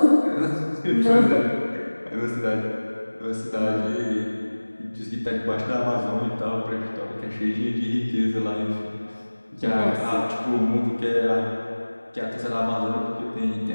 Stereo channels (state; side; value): inverted; both; correlation -1.00